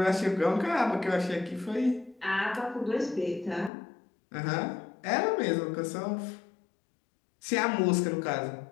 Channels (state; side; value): drops out; right; at 3.7 s